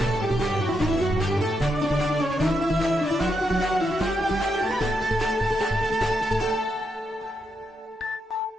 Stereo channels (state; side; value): normal; both; correlation 0.82